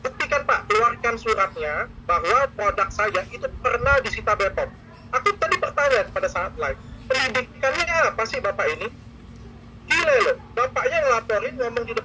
Pak, keluarkan suratnya bahwa produk saya itu pernah disita BPOM. Aku tadi bertanya pada saat live, pendidikannya apa sih Bapak ini? Gila loh, bapaknya ngelaporin, ngomong di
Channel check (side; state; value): both; identical; correlation 1.00